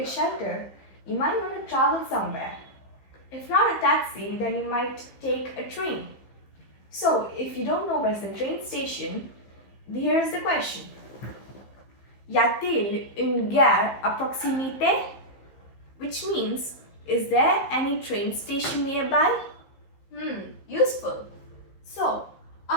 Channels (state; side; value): late; right; 15 ms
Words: a shelter, you might want to travel somewhere. If not a taxi, then you might take a train. So, if you don't know where's the train station, here's the question. Y a-t-il une gare à proximité? Which means, is there any train station nearby? Useful. So,